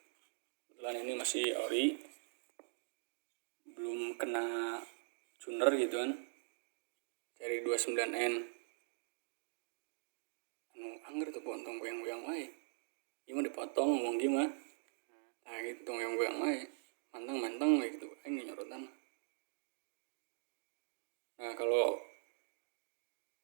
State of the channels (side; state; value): left; silent; digital silence